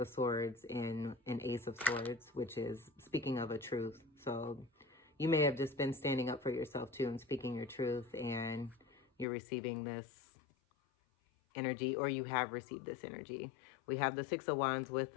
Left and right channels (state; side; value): drops out; right; at 9.2 s